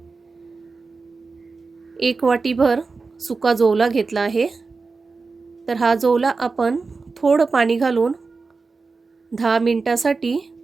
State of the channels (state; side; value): quieter; left; 4.2 dB